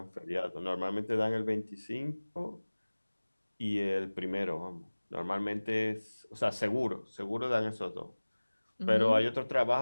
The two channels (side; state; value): both; inverted; correlation -1.00